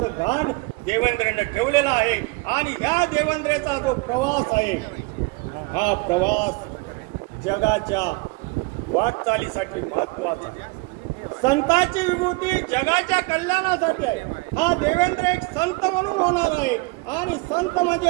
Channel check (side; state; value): left; quieter; 25.6 dB